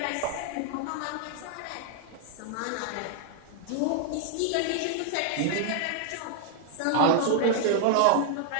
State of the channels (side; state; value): both; different; correlation 0.00